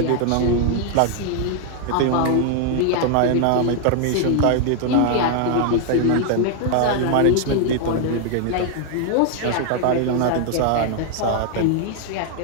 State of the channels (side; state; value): both; different; correlation 0.00